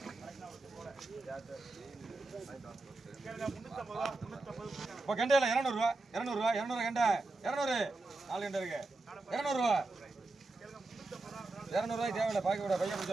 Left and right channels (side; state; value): left; quieter; 3.2 dB